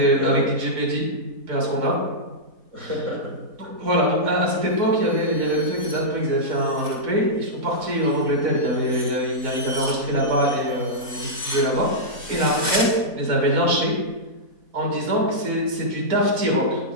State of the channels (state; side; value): late; left; 4.1 ms